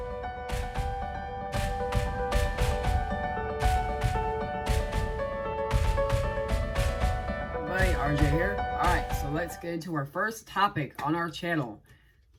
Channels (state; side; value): identical; both; correlation 1.00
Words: Everybody, RJ here. Alright, so let's get into our first topic on our channel.